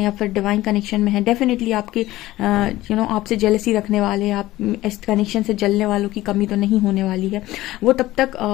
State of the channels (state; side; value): quieter; right; 16.6 dB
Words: या फिर डिवाइन कनेक्शन में हैं, डेफिनेटली आपके आपसे जेलसी रखने वाले, आप इस कनेक्शन से जलने वालों की कमी तो नहीं होने वाली है। वो तब तक